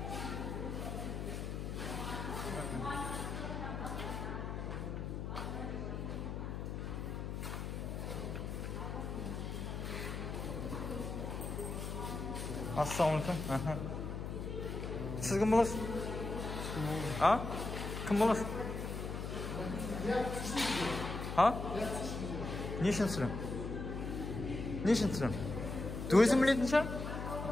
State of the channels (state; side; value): noise; left; hum, 4 dB below the sound